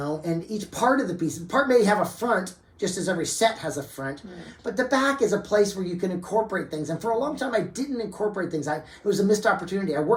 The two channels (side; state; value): both; identical; correlation 1.00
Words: and each part of the piece, part may have a front, just as every set has a front, but the back is a place where you can incorporate things. And for a long time, I didn't incorporate things. It was a missed opportunity. I